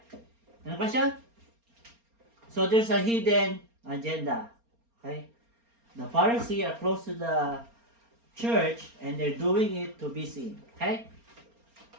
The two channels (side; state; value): left; late; 4.3 ms